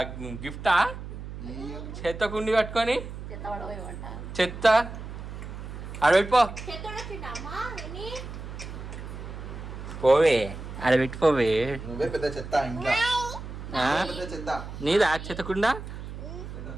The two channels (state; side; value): noise; right; hum, 10 dB below the sound